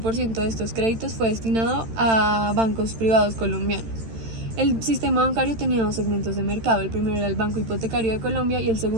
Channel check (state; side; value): late; left; 13 ms